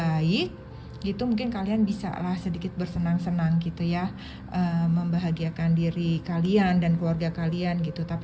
gitu. Mungkin kalian bisa lah sedikit bersenang-senang gitu ya, membahagiakan diri kalian dan keluarga kalian gitu.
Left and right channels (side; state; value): both; identical; correlation 1.00